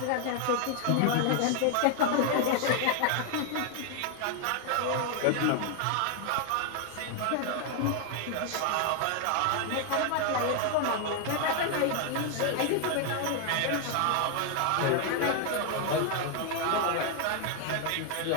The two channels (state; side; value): different; both; correlation 0.00